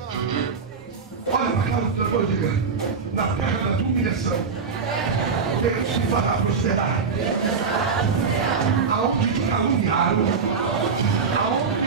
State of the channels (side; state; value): left; quieter; 5.3 dB